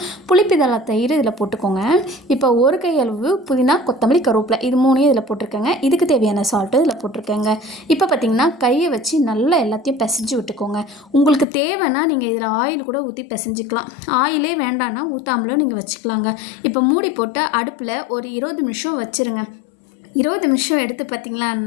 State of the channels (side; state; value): right; drops out; at 11.5 s